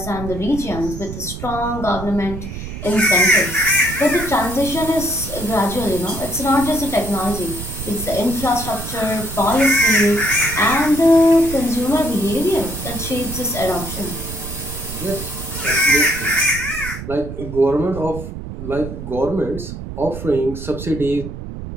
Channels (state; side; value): noise; right; rumble, 9 dB below the sound